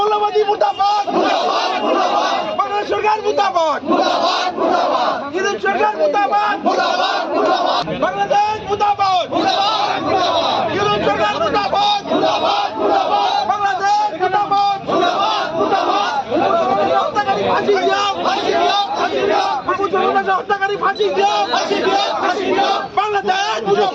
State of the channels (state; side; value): identical; both; correlation 1.00